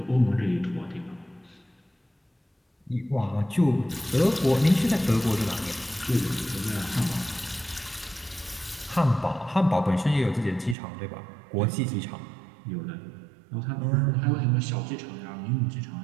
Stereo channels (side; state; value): left; drops out; at 10.8 s